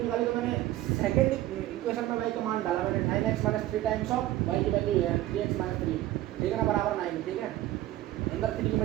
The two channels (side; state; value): left; quieter; 15.1 dB